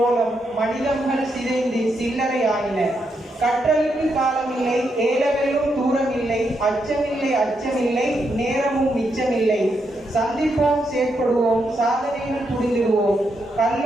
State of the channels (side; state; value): both; normal; correlation 0.81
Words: மனிதர்கள் சிதைந்து சில்லறை ஆயின. கற்றலுக்கு காலமில்லை, ஏலவெல்லும் தூரமில்லை, அச்சமில்லை அச்சமில்லை, நேரமும் மிச்சமில்லை. சந்திப்போம், செயற்படுவோம், சாதனையில் புரிந்திடுவோம்.